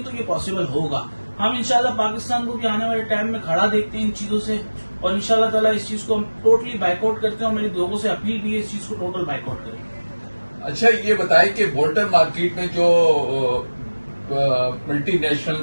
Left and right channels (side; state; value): both; inverted; correlation -1.00